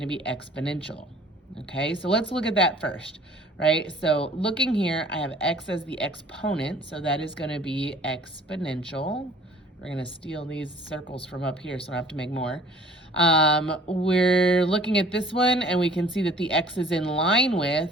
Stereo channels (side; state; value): both; normal; correlation 0.51